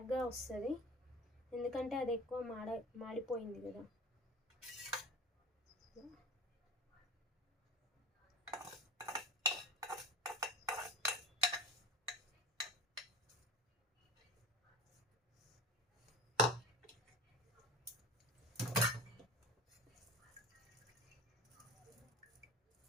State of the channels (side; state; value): both; normal; correlation 0.34